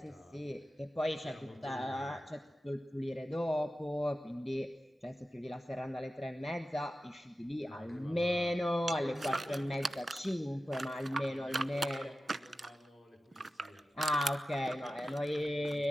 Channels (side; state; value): both; normal; correlation 0.94